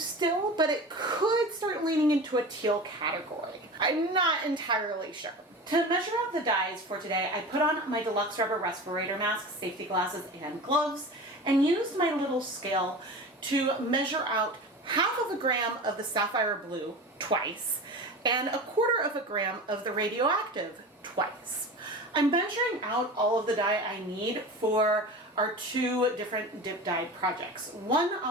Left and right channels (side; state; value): both; normal; correlation 0.32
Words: but it could start leaning into a teal category. I'm not entirely sure. To measure out the dyes for today, I put on my deluxe rubber respirator mask, safety glasses, and gloves, and used my little scale to measure out ½ gram of the Sapphire Blue twice, and ¼ gram of the Radioactive twice. I'm measuring out all of the dye I need for our 2 different dip dyed projects. One,